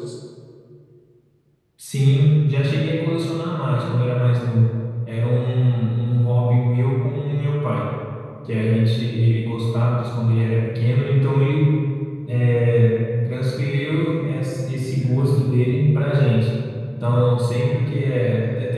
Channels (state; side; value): identical; both; correlation 1.00